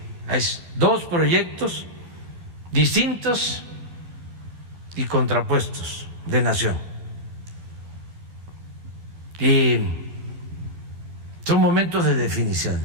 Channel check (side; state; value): left; late; 12 ms